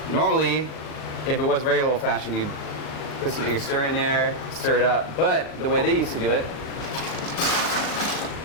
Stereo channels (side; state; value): right; late; 39 ms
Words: Normally, if it was regular old fashioned, you'd put some Angostura in there, stir it up. But the way they used to do it